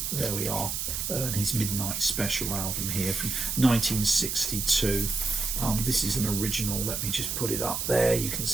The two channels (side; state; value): right; noise; hiss, 2 dB below the sound